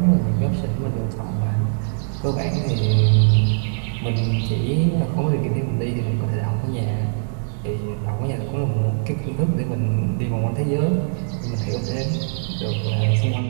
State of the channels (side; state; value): left; silent; 64 dB below the other